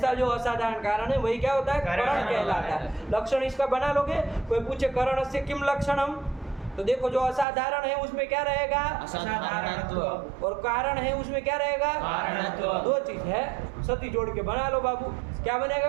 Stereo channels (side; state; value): left; drops out; at 7.5 s